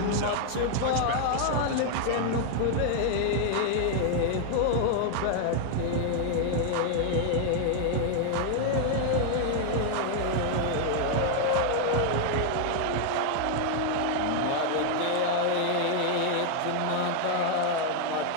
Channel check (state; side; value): different; both; correlation 0.00